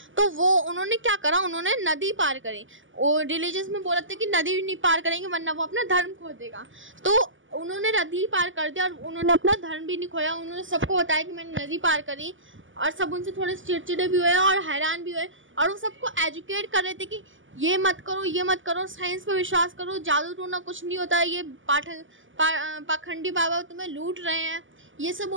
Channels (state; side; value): late; left; 0.57 ms